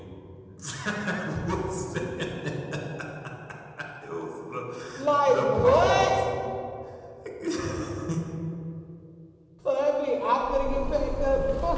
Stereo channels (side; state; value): both; identical; correlation 1.00